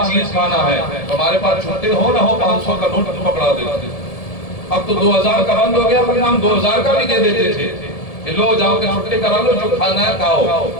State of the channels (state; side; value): late; right; 1.7 ms